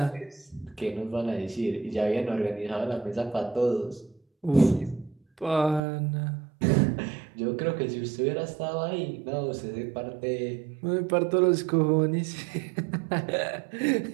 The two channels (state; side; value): drops out; left; at 5.8 s